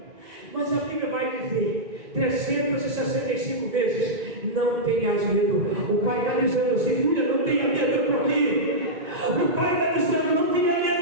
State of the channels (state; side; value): late; left; 2.5 ms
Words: mas a Bíblia vai dizer 365 vezes: não tenhas medo. O Pai está dizendo assim: filha, não tenha medo, eu estou aqui. O Pai está dizendo: não tenha